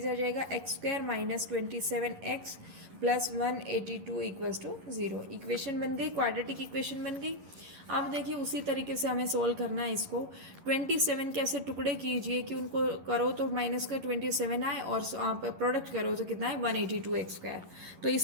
आ जाएगा x square minus 27x plus 182 equals to 0। Equation बन गई, क्वाड्रेटिक इक्वेशन बन गई। अब देखिए उसी तरीके से हमें सोल्व करना है इसको। 27 के ऐसे टुकड़े कीजिए कि उनको करो तो माइनस का 27 आए और आप प्रोडक्ट करो तो कितना है 182 एक्स स्क्वायर। तो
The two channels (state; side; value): late; left; 11 ms